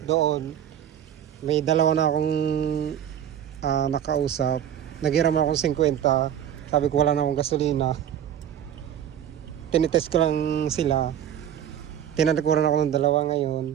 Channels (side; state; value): left; quieter; 10.1 dB